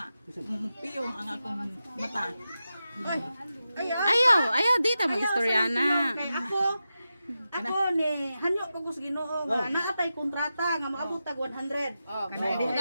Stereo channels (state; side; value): inverted; both; correlation -0.91